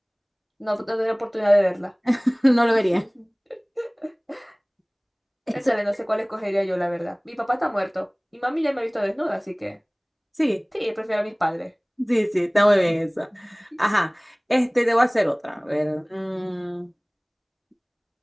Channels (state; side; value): identical; both; correlation 1.00